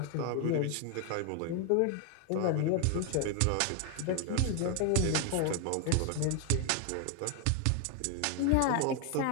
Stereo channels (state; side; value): different; both; correlation 0.01